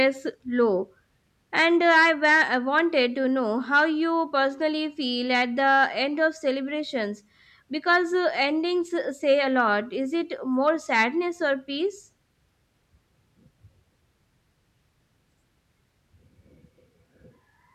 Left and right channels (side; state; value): both; identical; correlation 1.00